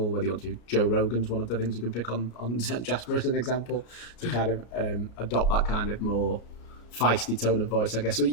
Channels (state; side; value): late; right; 34 ms